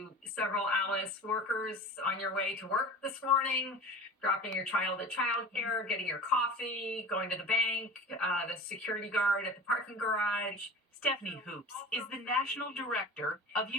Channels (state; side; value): normal; both; correlation 0.37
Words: several Alice workers on your way to work this morning, dropping your child at childcare, getting your coffee, going to the bank, the security guard at the parking garage. Stephanie Hoops is the national director of